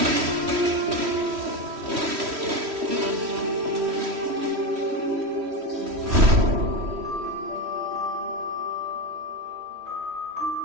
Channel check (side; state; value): left; late; 3.1 ms